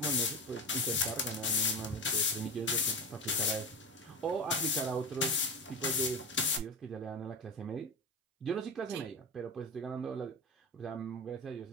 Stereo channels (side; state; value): both; normal; correlation 0.23